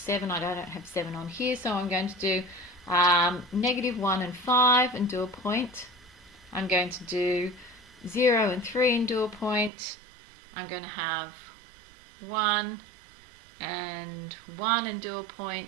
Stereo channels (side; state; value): left; drops out; at 9.7 s